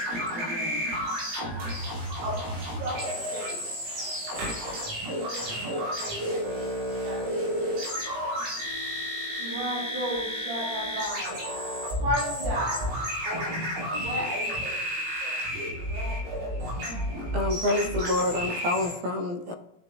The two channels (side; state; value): left; late; 17 ms